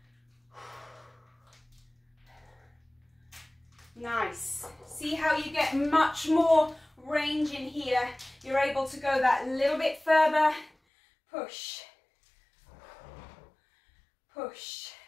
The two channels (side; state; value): right; drops out; at 10.7 s